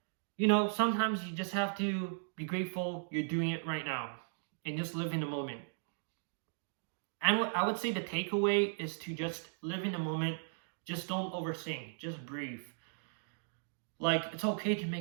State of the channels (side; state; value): left; silent; digital silence